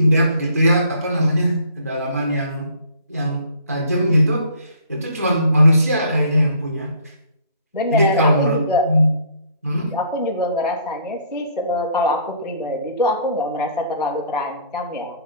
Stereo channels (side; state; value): both; inverted; correlation -0.57